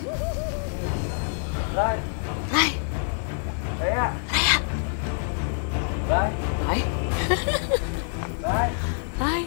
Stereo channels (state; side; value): silent; right; digital silence